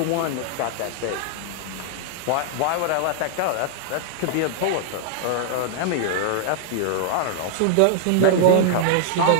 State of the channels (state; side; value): different; both; correlation -0.01